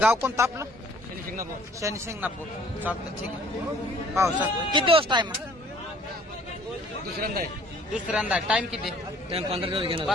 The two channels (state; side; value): normal; both; correlation 0.56